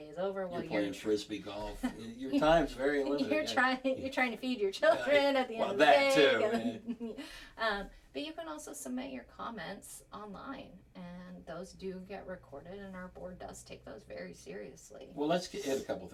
is over. You're playing frisbee golf. Your time's very limited. You're trying to feed your children at the end of the day. Too. But you can also submit your comments online, and those do get recorded, and our board does take those very seriously. Well, let's hit a couple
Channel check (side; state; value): both; identical; correlation 1.00